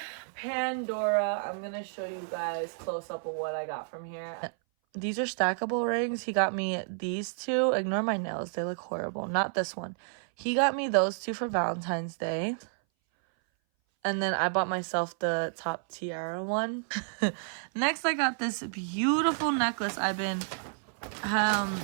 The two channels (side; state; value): left; silent; 57 dB below the other